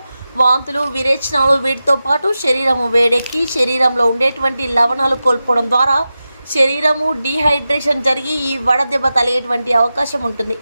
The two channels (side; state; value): both; inverted; correlation -0.93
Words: వాంతులు, విరేచనాలు వీటితో పాటు శరీరము వేడెక్కి శరీరంలో ఉండేటువంటి లవణాలు కోల్పోవడం ద్వారా శరీరము డీహైడ్రేషన్ జరిగి ఈ వడదెబ్బ తగిలేటువంటి అవకాశం ఉంటుంది.